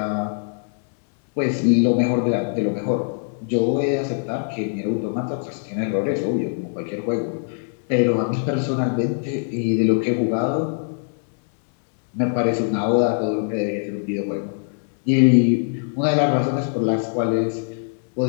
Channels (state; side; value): silent; right; 64 dB below the other